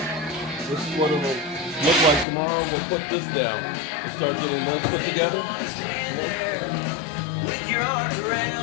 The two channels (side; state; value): right; drops out; at 2.2 s